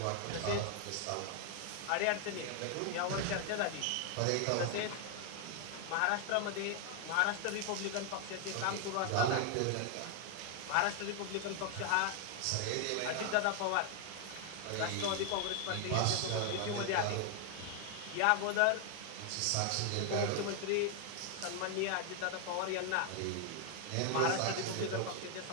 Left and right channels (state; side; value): different; both; correlation 0.00